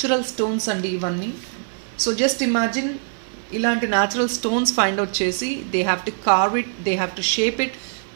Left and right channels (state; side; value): silent; left; 63 dB below the other